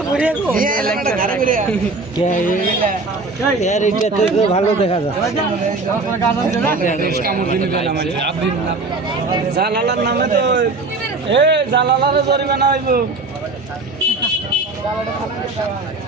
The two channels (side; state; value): left; quieter; 3.5 dB